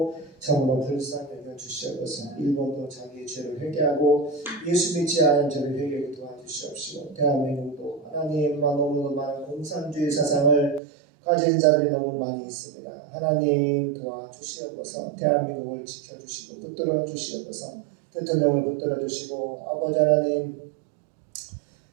참으로 불쌍히 여겨 주시옵소서. 일본도 자기의 죄를 회개하고 예수 믿지 않은 죄를 회개하게 도와주시옵시고 대한민국도 하나님만 너무도 많은 공산주의 사상을 가진 자들이 너무 많이 있습니다. 하나님 도와주시옵소서. 대한민국을 지켜주시고 붙들어 주시옵소서. 대통령을 붙들어 주시고 아버지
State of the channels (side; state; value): left; drops out; at 10.8 s